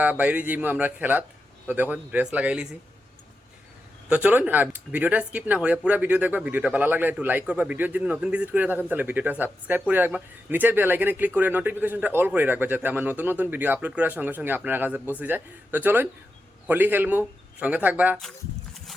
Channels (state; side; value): normal; both; correlation 0.88